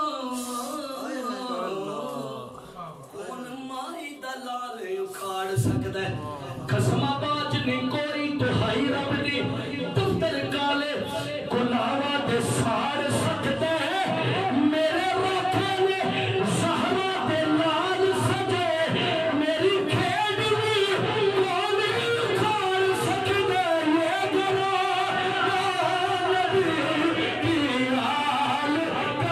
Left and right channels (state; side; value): identical; both; correlation 1.00